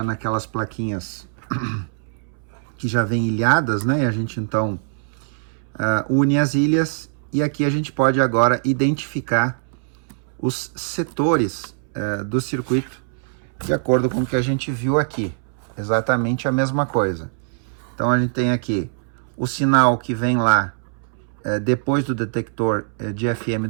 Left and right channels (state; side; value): silent; left; 64 dB below the other